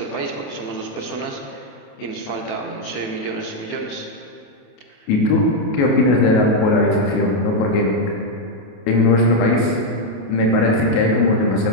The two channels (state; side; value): late; right; 28 ms